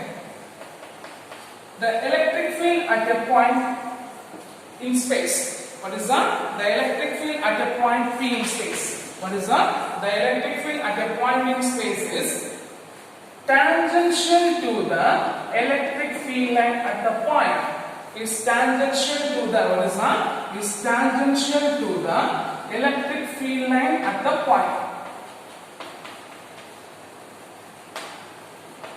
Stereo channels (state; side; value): identical; both; correlation 1.00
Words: The electric field at a point in space. What is that? The electric field at a point P in space. What is that? The electric field at a point in space is tangential to the electric field line at the point. Is tangential to the, what is that? Is tangential to the electric field line at the point.